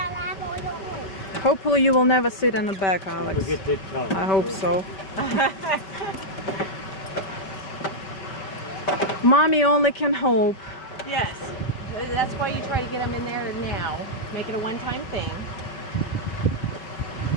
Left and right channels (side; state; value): right; late; 5.2 ms